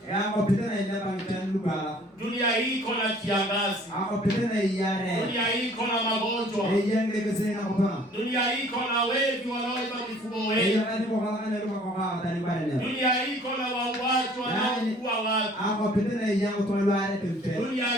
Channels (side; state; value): both; normal; correlation 0.55